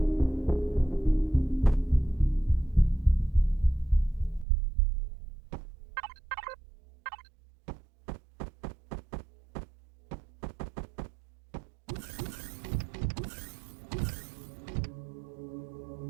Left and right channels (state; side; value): drops out; left; at 4.5 s